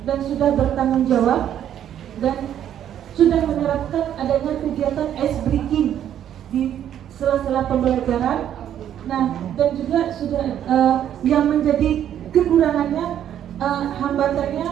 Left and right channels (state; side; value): quieter; left; 10.4 dB